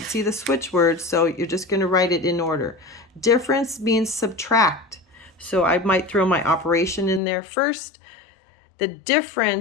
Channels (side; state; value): right; drops out; at 7.2 s